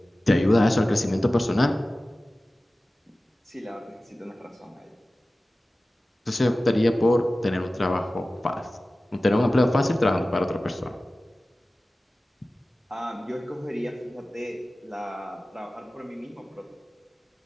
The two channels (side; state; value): both; normal; correlation 0.96